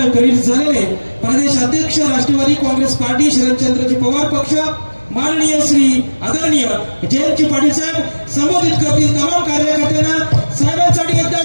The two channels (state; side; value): inverted; both; correlation -1.00